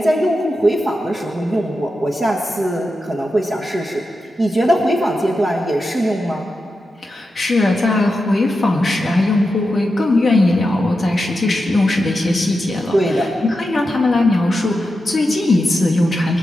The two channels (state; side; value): normal; both; correlation 0.89